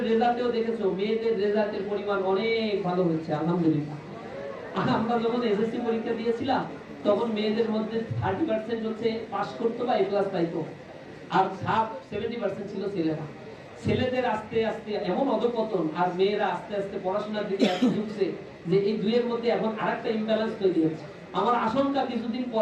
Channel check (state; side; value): identical; both; correlation 1.00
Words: রেজাল্টেও দেখেছো মেয়েদের রেজাল্টের পরিমাণ অনেক ভালো হয়েছে আলহামদুলিল্লাহ। আমরা যখন এসএসসি পরীক্ষা দিয়েছিলাম তখন মেয়েদের মধ্যে 30% হচ্ছে পাস করতো বা এ প্লাস পাইতো, আর 70% ছিল ছেলেরা। ছেলেদের আস্তে আস্তে এমন অধপতন আর মেয়েরা আস্তে আস্তে পড়াশোনার দিকে এত ঝুঁকছে যে এই দুইয়ের মধ্যে এখন আরেকটা ইমব্যালেন্স তৈরি হচ্ছে। আমার আশঙ্কা কিছুদিন